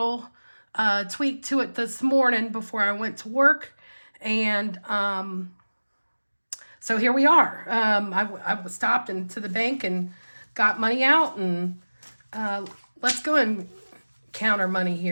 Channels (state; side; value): inverted; both; correlation -1.00